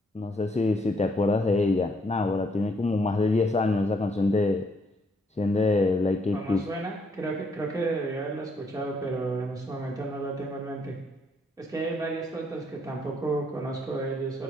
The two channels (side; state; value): both; normal; correlation 0.71